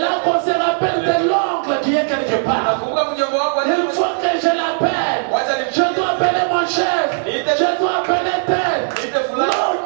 qu'on se rappelle de l'oncle qui est quelque part. Il faut que je l'appelle. Je dois appeler mon chef. Je dois appeler tel. Non,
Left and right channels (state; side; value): silent; left; 68 dB below the other